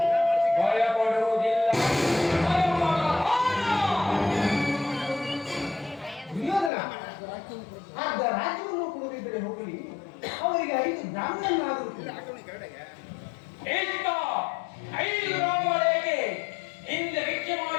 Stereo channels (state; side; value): drops out; right; at 6.7 s